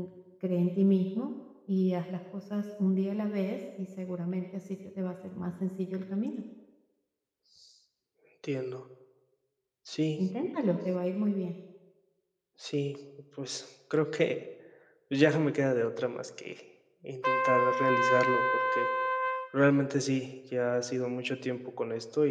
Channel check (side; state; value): both; identical; correlation 1.00